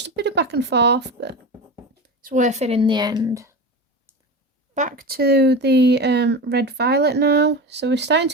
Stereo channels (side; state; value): both; normal; correlation 0.25